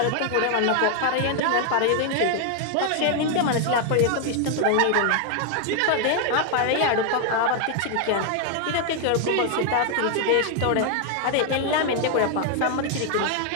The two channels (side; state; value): both; different; correlation 0.00